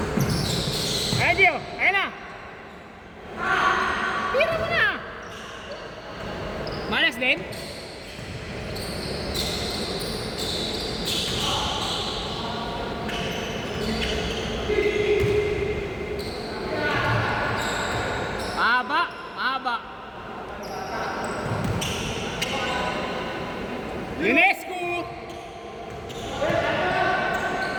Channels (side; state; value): both; identical; correlation 1.00